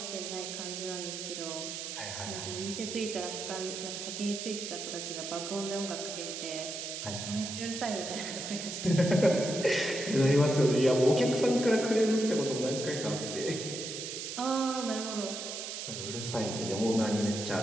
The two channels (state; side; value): noise; right; hiss, 6 dB below the sound